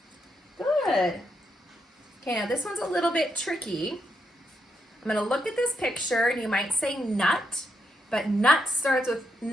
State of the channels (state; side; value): normal; both; correlation 0.81